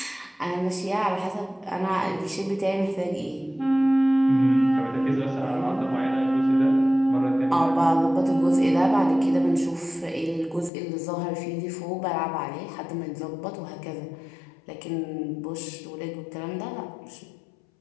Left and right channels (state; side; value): drops out; right; at 10.7 s